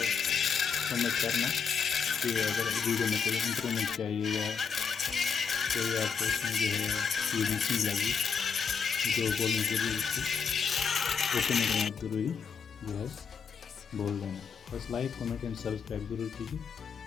कमेंट करना कि अगर वीडियो में कोई इम्प्रूवमेंट चाहिए या कोई आपको इसमें जो है चीज़ मिसिंग लगी जो बोलनी ज़रूरी थी, वो कमेंट में आप ज़रूरी जो है बोल देना। बस लाइक कमेंट एंड सब्सक्राइब ज़रूर कीजिए।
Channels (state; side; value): quieter; right; 6.1 dB